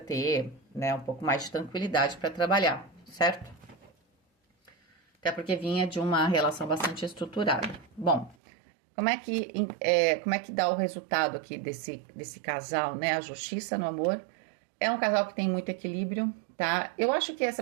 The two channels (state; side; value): drops out; left; at 8.3 s